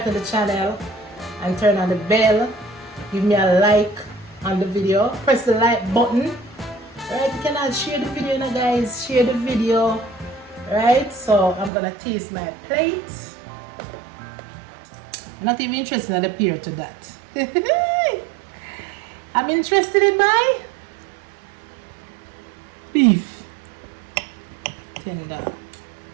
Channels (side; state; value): left; drops out; at 11.7 s